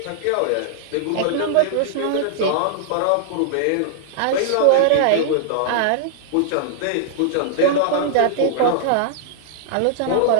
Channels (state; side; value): different; both; correlation -0.01